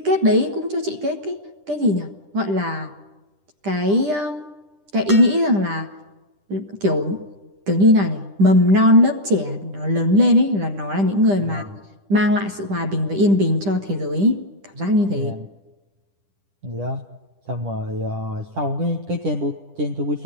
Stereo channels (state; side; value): late; left; 10 ms